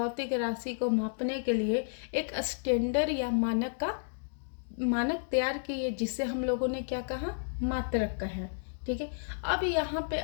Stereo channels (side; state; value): right; silent; digital silence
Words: राशि को मापने के लिए एक स्टैंडर्ड या मानक का मानक तैयार किए जिसे हम लोगों ने क्या कहा, मात्रक कहा। ठीक है, अब यहाँ पे